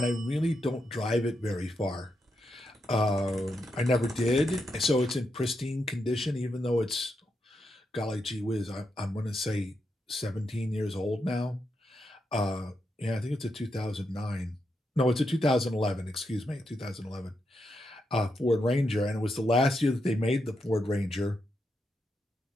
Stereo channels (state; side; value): normal; both; correlation 0.84